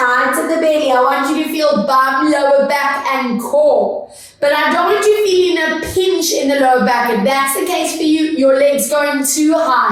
to the belly. I want you to feel bum, lower back and core. But I don't want you feeling a pinch in the lower back. If that's the case for you, your leg's going too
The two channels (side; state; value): both; identical; correlation 1.00